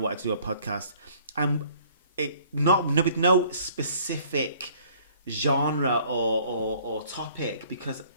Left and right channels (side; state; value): both; inverted; correlation -0.57